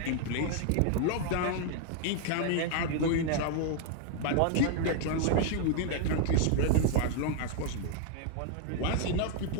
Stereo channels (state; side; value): different; both; correlation 0.00